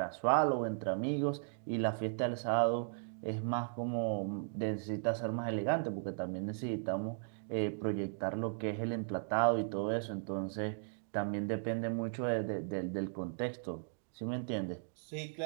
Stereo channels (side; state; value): left; silent; digital silence